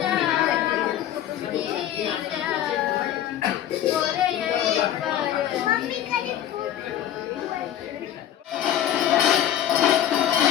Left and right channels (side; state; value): right; quieter; 11.2 dB